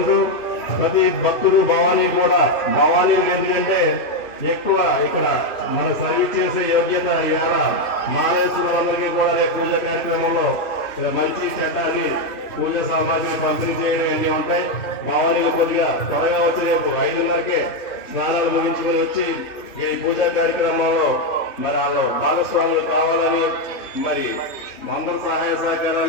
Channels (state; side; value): late; right; 2.8 ms